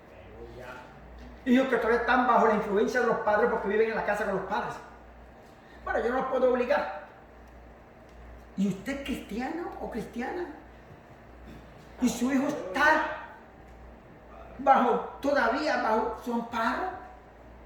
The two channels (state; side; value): identical; both; correlation 1.00